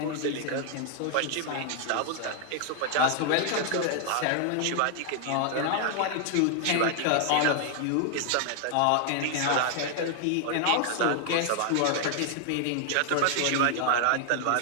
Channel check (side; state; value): both; different; correlation 0.00